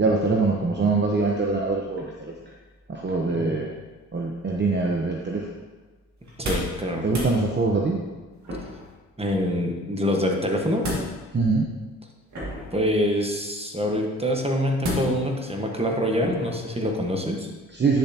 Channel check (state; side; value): normal; both; correlation 0.49